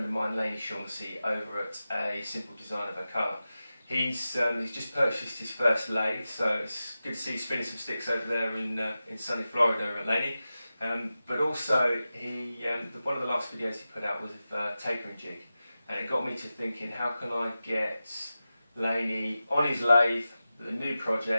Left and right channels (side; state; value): both; inverted; correlation -0.94